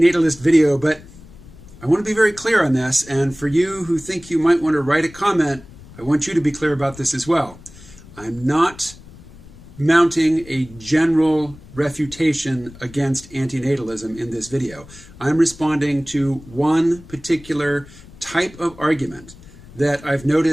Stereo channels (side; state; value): left; noise; rumble, 20 dB below the sound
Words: video, but I want to be very clear on this, and for you who think you might want to write a comment, I want you to be clear about this as well. I'm not mounting a general refutation against antinatalism in this video. I'm responding to one particular type of argument that I've